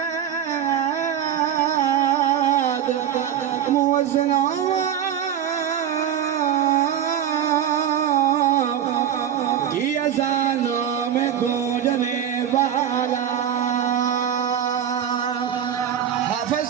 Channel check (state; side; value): quieter; left; 9.6 dB